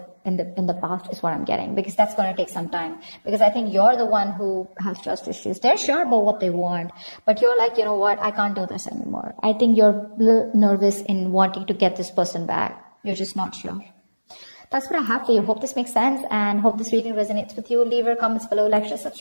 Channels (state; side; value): inverted; both; correlation -1.00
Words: the past, is what I'm getting, because that's going to take some time. Because I think you're the one who has trust issues. They're sure about what they want, but you're like, you know what, I can't do this anymore. I think you're a little nervous in wanting to get this person back. You're just not sure. That's what I have for you. Hope this makes sense, and hope this reading resonates with you. Leave your comments below, like, share,